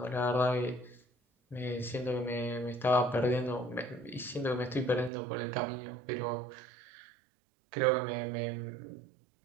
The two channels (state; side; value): drops out; left; at 5.1 s